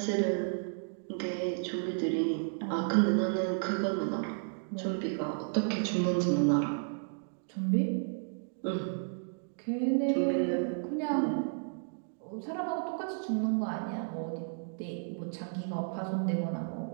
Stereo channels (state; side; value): silent; left; digital silence